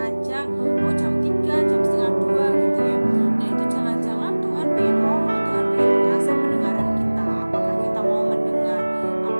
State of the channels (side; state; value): both; inverted; correlation -1.00